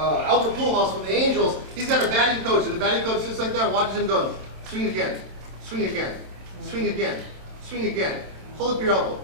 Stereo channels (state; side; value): late; left; 27 ms